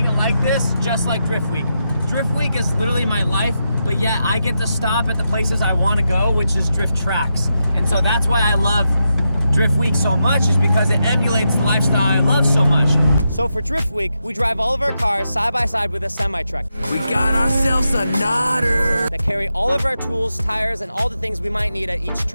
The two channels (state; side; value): inverted; both; correlation -0.86